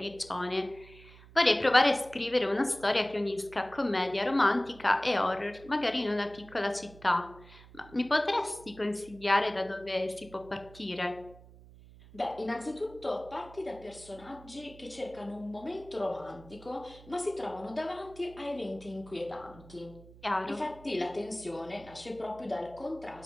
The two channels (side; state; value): right; noise; hum, 20 dB below the sound